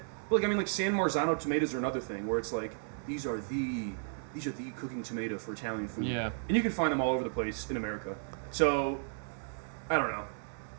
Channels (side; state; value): left; silent; digital silence